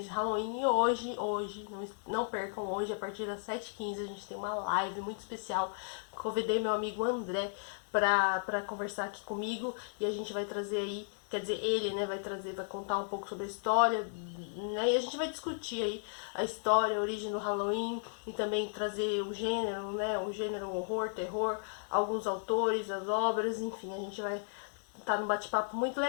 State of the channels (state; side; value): silent; right; digital silence